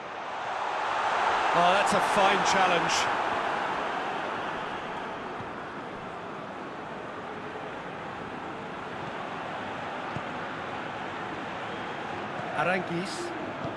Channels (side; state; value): both; identical; correlation 1.00